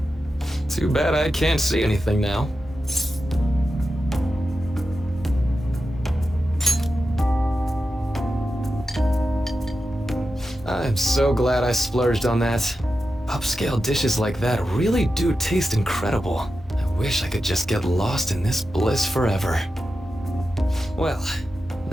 Too bad I can't see anything now. I'm so glad I splurged on that. Upscale dishes like that really do taste incredible. I wish I could just get lost in this bliss forever. Well,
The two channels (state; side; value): normal; both; correlation 0.91